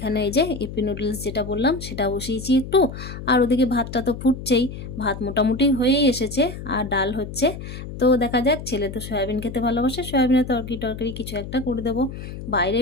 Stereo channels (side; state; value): left; noise; hum, 10 dB below the sound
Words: এই যে ইপি নুডলস যেটা বললাম সেটা বসিয়েছি একটু, আর ওদিকে ভাতটা তো ফুটছেই, ভাত মোটামুটি হয়েই এসেছে আর ডাল হচ্ছে। তো দেখা যাক, ছেলে তো সয়াবিন খেতে ভালোবাসে, সয়াবিনের তরকারি কিছু একটা করে দেবো। বাইরে